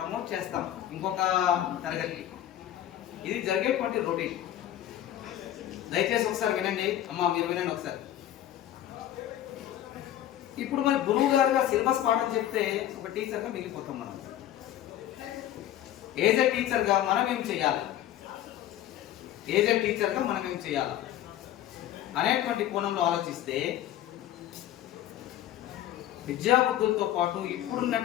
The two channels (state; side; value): quieter; right; 12.3 dB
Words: చేస్తాం ఇంకొక తరగతికి. ఇది జరిగేటువంటి రొటీన్. దయచేసి ఒకసారి వినండి అమ్మా, మీరు వినండి ఒకసారి. ఇప్పుడు మరి గురువు గారుగా సిలబస్ పాఠం చెప్తే ఒక టీచర్గా మిగిలిపోతాం మనం. ఏజ్ ఏ టీచర్గా మనం ఏం చేయాలి, ఏజ్ ఏ టీచర్గా మనం ఏం చేయాలి అనేటువంటి కోణంలో ఆలోచిస్తే విద్యాబుద్ధులతో పాటు